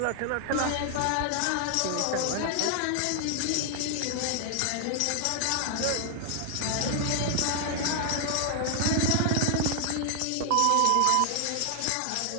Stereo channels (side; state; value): both; different; correlation 0.00